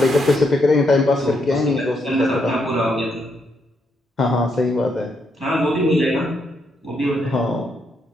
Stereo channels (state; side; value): normal; both; correlation 0.77